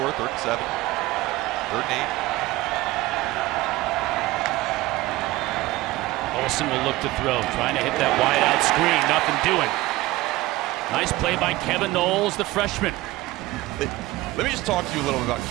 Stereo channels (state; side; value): quieter; left; 18.7 dB